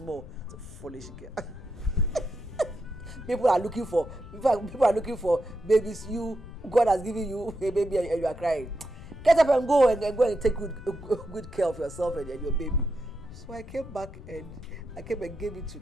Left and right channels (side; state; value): left; noise; rumble, 14 dB below the sound